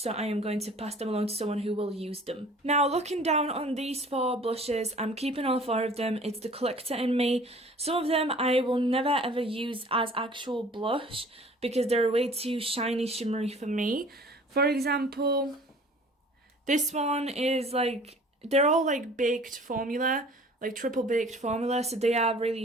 I am going to pass them along to someone who will use them. Now, looking down on these 4 blushes, I'm keeping all 4 of them. It's the collector in me. Some of them I will never ever use as actual blush because they're way too shiny, shimmery for me. For example, this one is like, they're all like baked formula, like triple baked formula, so they are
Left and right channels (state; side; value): normal; both; correlation 0.49